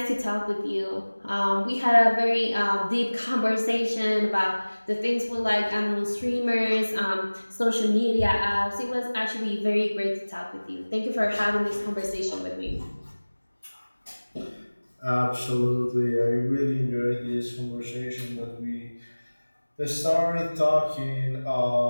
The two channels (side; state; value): both; inverted; correlation -1.00